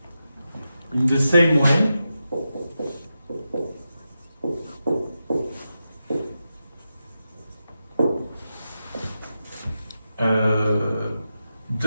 in the same way,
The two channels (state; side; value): inverted; both; correlation -0.90